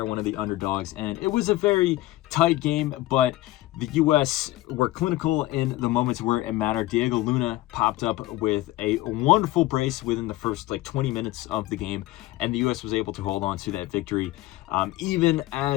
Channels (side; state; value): right; quieter; 17.2 dB